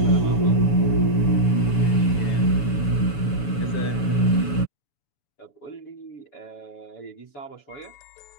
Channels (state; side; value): late; right; 7.0 ms